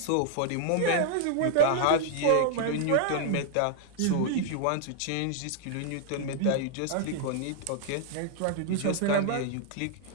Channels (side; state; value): both; different; correlation 0.00